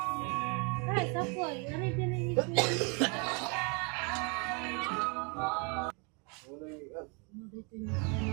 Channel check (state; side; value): quieter; left; 33.5 dB